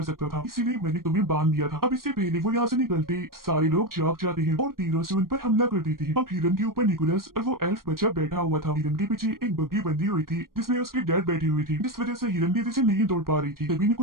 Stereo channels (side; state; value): left; late; 0.92 ms